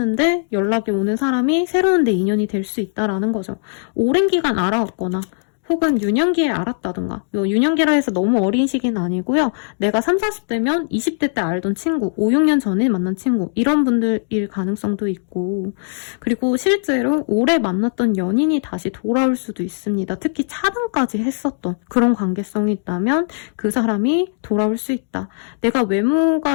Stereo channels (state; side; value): silent; right; digital silence